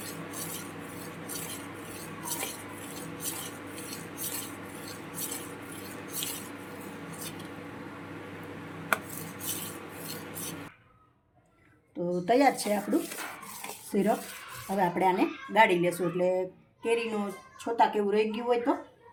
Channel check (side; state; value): both; identical; correlation 1.00